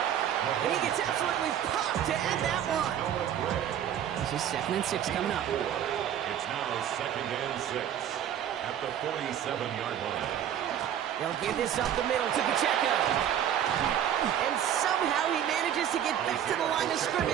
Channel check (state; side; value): quieter; left; 10.0 dB